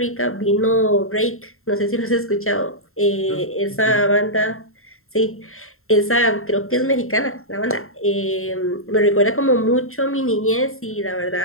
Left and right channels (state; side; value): late; right; 0.62 ms